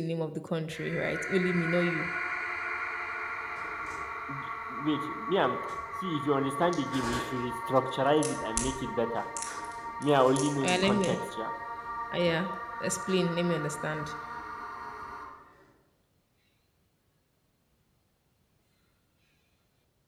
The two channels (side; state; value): both; identical; correlation 1.00